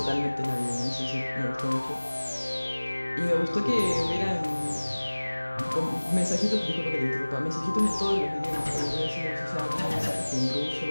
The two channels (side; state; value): both; inverted; correlation -1.00